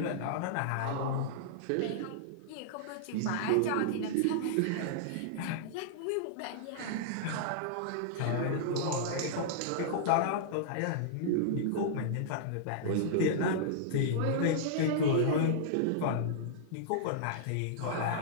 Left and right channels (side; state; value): both; different; correlation -0.02